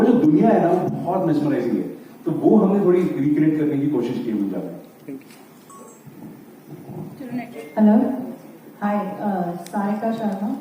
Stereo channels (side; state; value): both; identical; correlation 1.00